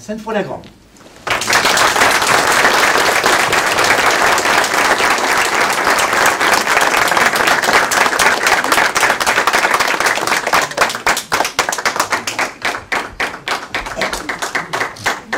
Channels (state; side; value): identical; both; correlation 1.00